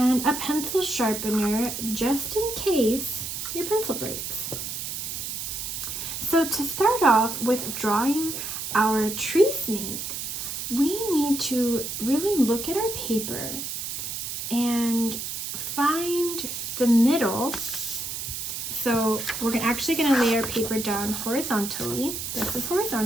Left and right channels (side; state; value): right; noise; hiss, 5 dB below the sound